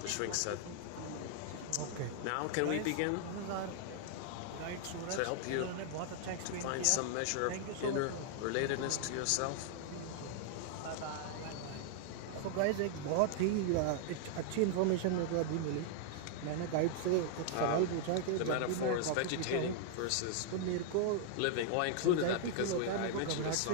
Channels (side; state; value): both; different; correlation 0.00